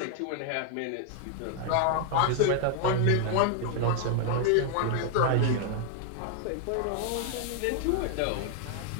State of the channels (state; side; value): different; both; correlation 0.00